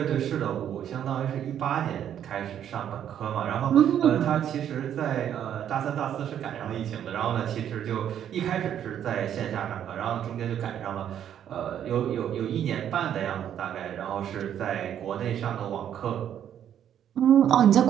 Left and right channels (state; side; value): quieter; left; 9.9 dB